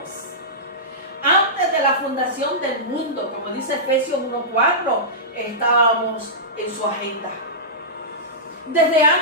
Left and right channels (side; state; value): both; normal; correlation -0.15